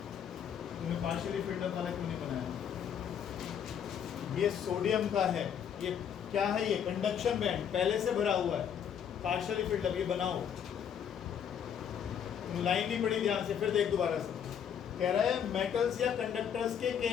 तुमने पार्शियली फिल्ड अप वाला क्यों नहीं बनाया? ये सोडियम का है, ये क्या है, ये कंडक्शन बैंड पहले से भरा हुआ है, पार्शियली फिल्ड अप। ये बनाओ, लाइन नहीं पड़ी ध्यान से, फिर देख दोबारा से। कह रहा है मेटल्स या कंडक्टर्स के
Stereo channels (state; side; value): quieter; right; 8.4 dB